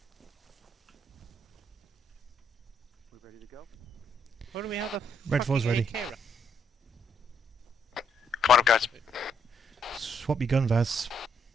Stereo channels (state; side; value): normal; both; correlation 0.74